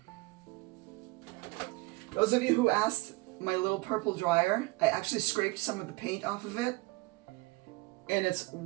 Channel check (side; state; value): left; quieter; 24.2 dB